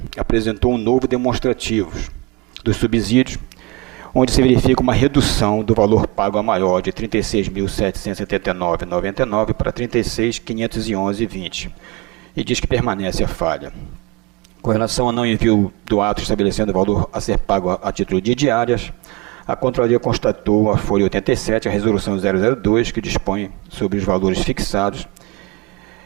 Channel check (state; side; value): quieter; left; 22.9 dB